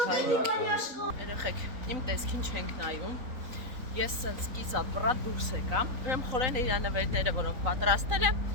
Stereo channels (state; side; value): late; left; 3.9 ms